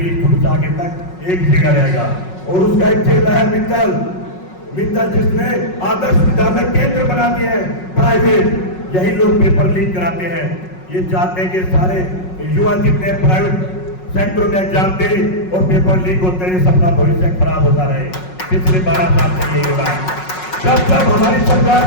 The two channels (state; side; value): late; right; 5.5 ms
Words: शुरू से आगे तक एक जगह रहेगा। और उसका एक चेहरा है मित्तल, जिसने आदर्श विद्यालय केंद्र बना दिए हैं प्राइवेट। यही लोग पेपर लीक कराते हैं। ये चाहते हैं कि सारे युवा जितने प्राइवेट सेक्टर में एग्जाम दे और पेपर लीक होते हैं, सबका भविष्य खराब होता रहे। पिछले 12 साल से यही हो रहा है। जब जब हमारी सरकार